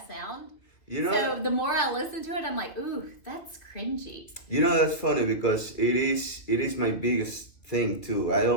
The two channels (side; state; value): right; late; 2.7 ms